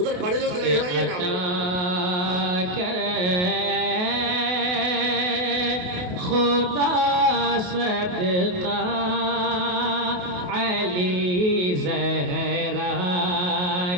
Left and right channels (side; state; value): left; late; 28 ms